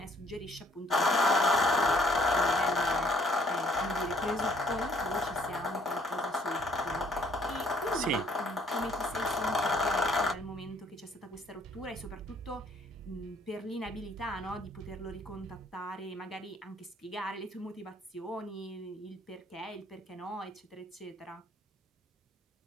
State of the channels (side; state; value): both; normal; correlation 0.62